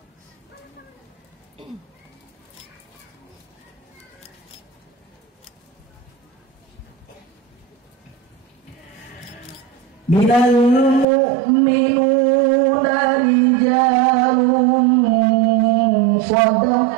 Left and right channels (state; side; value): drops out; left; at 11.1 s